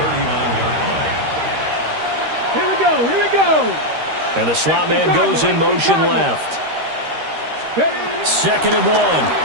39-yard line. Here we go, here we go. And the slot man goes in motion left. Second and 1.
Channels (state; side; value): late; left; 13 ms